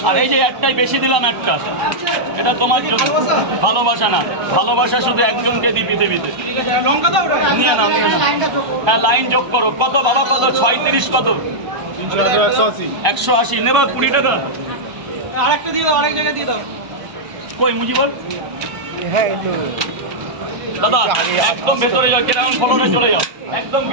আর এই যে একটাই বেশি দিলাম একটা, এটা তোমার জন্য। ভালোবাসা না, ভালোবাসা শুধু একজনকে দিই পৃথিবীতে। নিয়ে নাও হ্যাঁ, লাইন যোগ করো। কত বাবা, কত 36, কত 180 নেবা। 20 টাকা আরেকটা দিয়ে দাও, আরেক জায়গায় দিয়ে দাও। কই মুজিবর? হ্যাঁ দাদা একদম ভেতরে যাও, গ্রাউন্ড ফ্লোরে চলে যাও, একদম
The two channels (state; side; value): late; left; 1.0 ms